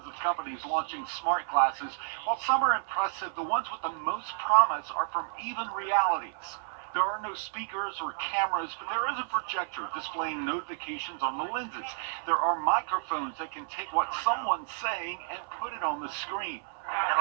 of companies launching smart glasses. While some are impressive, the ones with the most promise are from Even Realities. There are no speakers or cameras, but there is a projector displaying notifications on the lenses. There are microphones that can take what someone's saying and put it on the screen. Can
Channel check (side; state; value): left; silent; 57 dB below the other